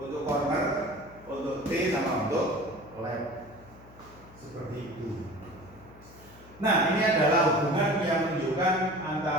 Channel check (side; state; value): left; noise; hum, 22 dB below the sound